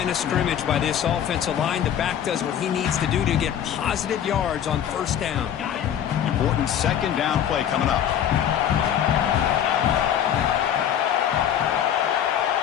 of scrimmage by this offensive line. The back does what he needs to do to get positive yards on first down. Important 2nd down play coming up.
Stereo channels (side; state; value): right; quieter; 9.7 dB